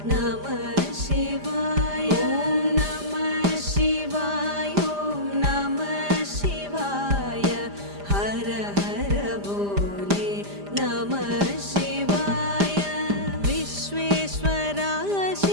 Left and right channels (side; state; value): left; late; 5.0 ms